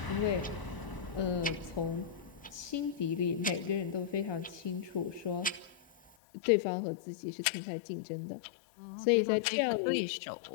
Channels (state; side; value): drops out; right; at 6.1 s